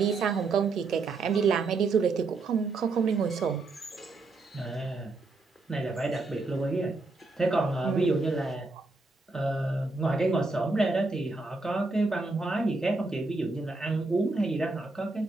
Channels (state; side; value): quieter; left; 3.6 dB